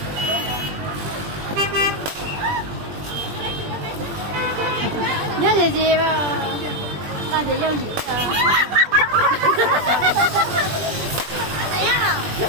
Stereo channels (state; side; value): late; left; 20 ms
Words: Nhớ gì mà tao sẽ yêu gì